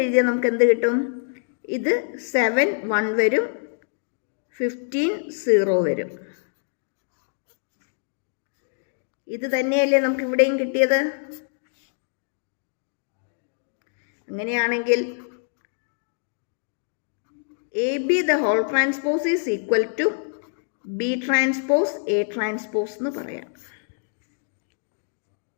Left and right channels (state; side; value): silent; right; digital silence